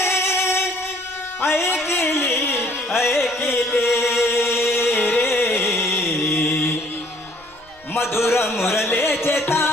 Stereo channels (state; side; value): noise; left; rumble, 29 dB below the sound